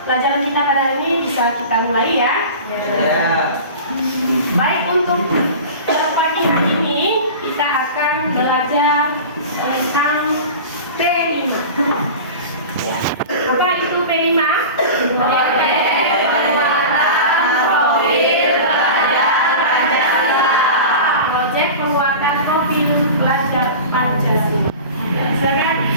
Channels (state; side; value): inverted; both; correlation -0.34